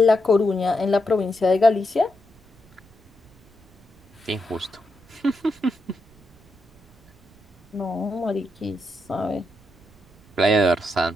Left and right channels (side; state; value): right; noise; rumble, 29 dB below the sound